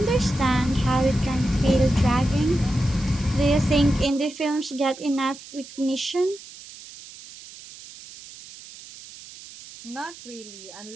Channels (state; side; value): noise; right; hiss, 17 dB below the sound